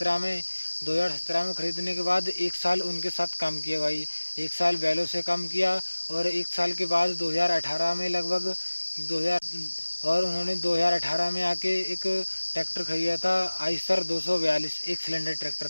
में। 2017 में ख़रीदने के बाद 1 साल उनके साथ काम किया भाई। 1 साल बैलों से काम किया और 1 साल के बाद 2018 में लगभग 2000 और उन्होंने 2018 में आके एक ट्रैक्टर खरीदा था, आइसर 242। एक सिलेंडर ट्रैक्टर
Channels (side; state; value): both; inverted; correlation -1.00